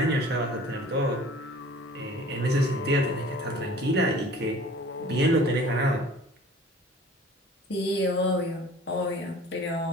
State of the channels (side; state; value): both; normal; correlation 0.47